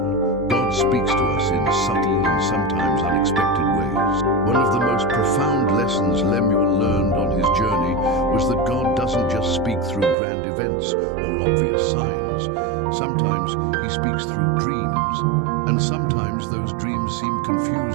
God speaks to us in subtle and sometimes unexpected ways. One of the most profound lessons Lemuel learned on his journey was that God doesn't just speak through grand events or obvious signs. Sometimes he speaks through dreams, and sometimes those dreams seem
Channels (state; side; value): drops out; left; at 10.2 s